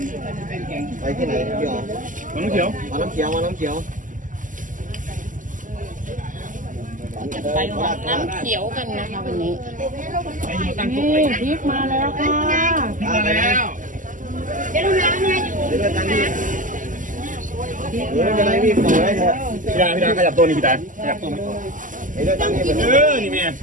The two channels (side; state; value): left; late; 0.38 ms